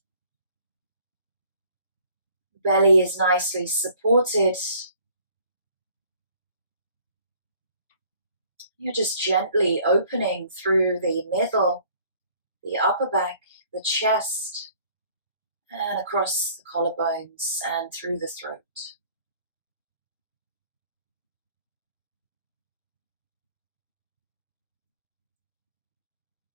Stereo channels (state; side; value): inverted; both; correlation -0.57